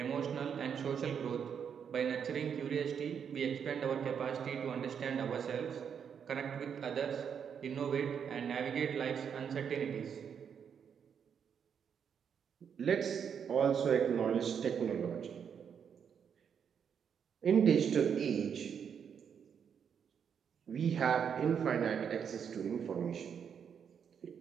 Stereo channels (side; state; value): left; quieter; 7.5 dB